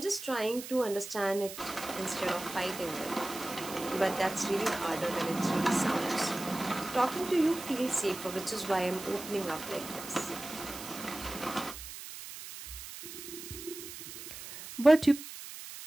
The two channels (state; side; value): noise; right; hiss, 11 dB below the sound